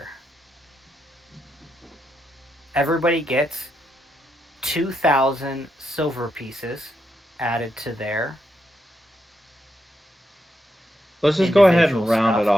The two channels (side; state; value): both; normal; correlation 0.82